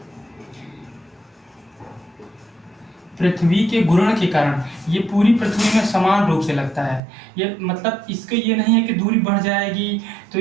पृथ्वी के घूर्ण के कारण ये पूरी पृथ्वी में समान रूप से लगता है। ये मतलब इसका ये नहीं है कि दूरी बढ़ जाएगी तो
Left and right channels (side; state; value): left; drops out; at 7.0 s